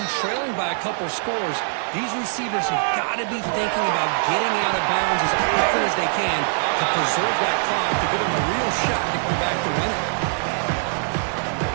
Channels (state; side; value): silent; left; 64 dB below the other